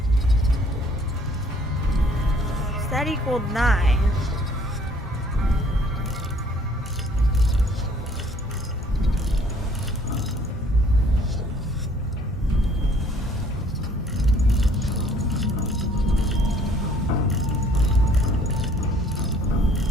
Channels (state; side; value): normal; both; correlation 0.59